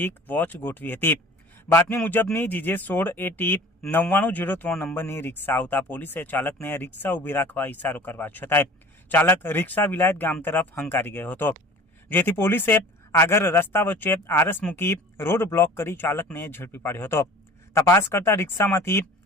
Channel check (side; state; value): both; normal; correlation 0.44